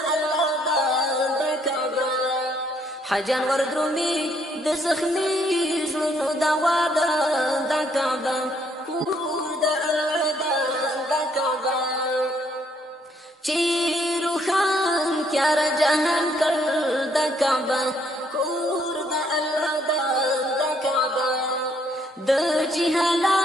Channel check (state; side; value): normal; both; correlation 0.69